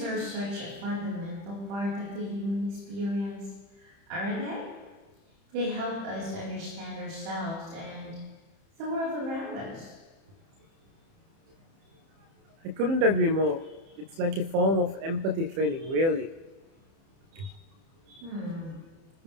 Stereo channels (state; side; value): late; left; 30 ms